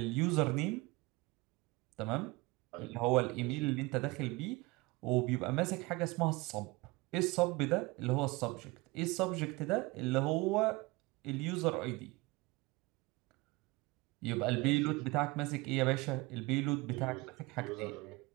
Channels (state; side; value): quieter; left; 23.1 dB